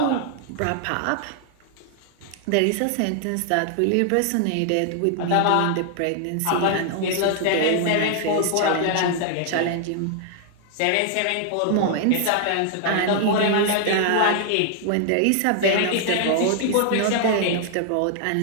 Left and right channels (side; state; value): both; different; correlation 0.00